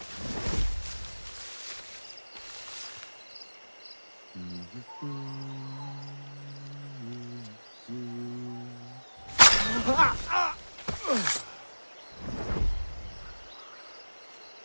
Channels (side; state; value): both; inverted; correlation -1.00